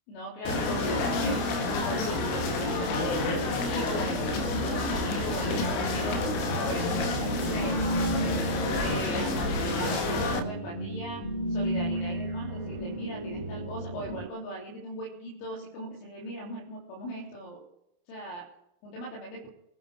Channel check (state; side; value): late; right; 29 ms